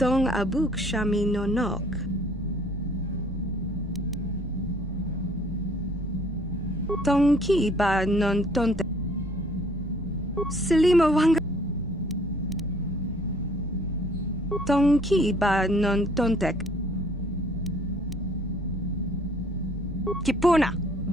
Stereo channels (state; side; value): normal; both; correlation 0.58